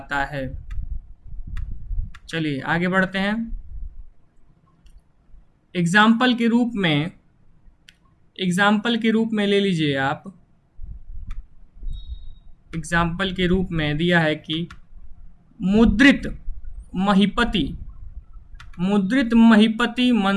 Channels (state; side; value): identical; both; correlation 1.00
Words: है। चलिए आगे बढ़ते हैं। एग्जाम्पल के रूप में ले लीजिए आप। एग्जाम्पल के रूप में दिया है कि मुद्रित